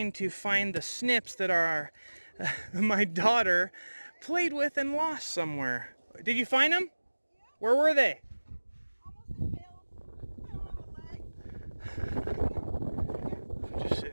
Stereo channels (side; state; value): both; inverted; correlation -1.00